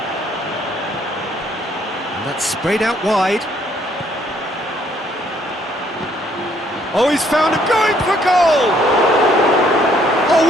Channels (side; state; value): both; normal; correlation 0.66